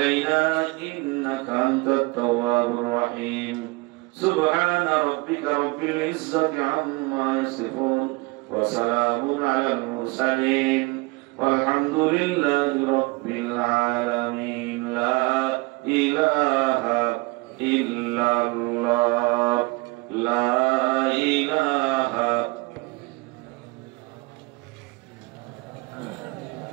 إنك أنت التواب الرحيم سبحان ربك رب العزة عما يصفون وسلام على المرسلين والحمد لله رب العالمين لا إله إلا الله لا إله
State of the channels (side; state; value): left; quieter; 25.2 dB